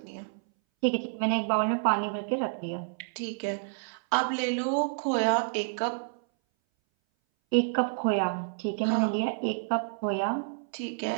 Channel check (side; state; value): left; silent; 59 dB below the other